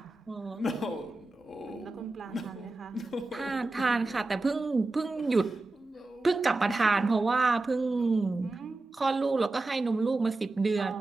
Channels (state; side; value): quieter; left; 3.1 dB